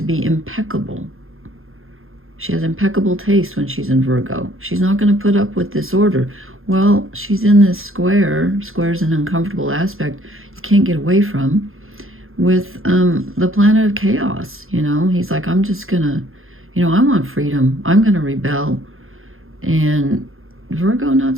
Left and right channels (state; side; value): late; left; 0.60 ms